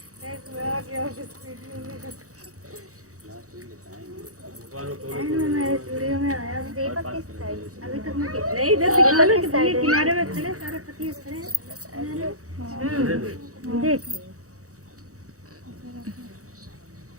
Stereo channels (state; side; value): late; left; 0.65 ms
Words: अभी तक मैं नहीं इधर दिखा ना कि भैया किनारे में खड़े सारे पतिये खड़े देख